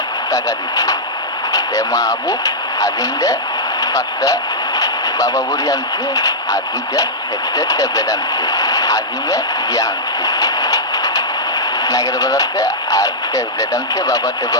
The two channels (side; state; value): both; normal; correlation -0.11